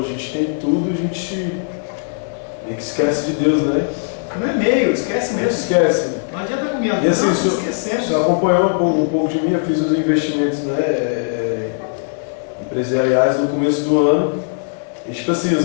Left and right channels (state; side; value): silent; right; digital silence